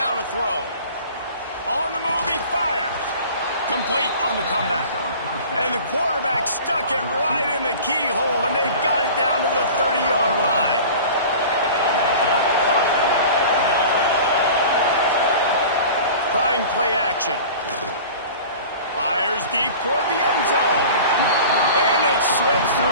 to throw. On the move, he fires. Complete on the comeback. And the quarterback stuck it right in the keyhole, and they've got it down to the 30-yard line. Trying play action. Fires deep toward the end zone. And it slips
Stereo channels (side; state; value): both; inverted; correlation -0.40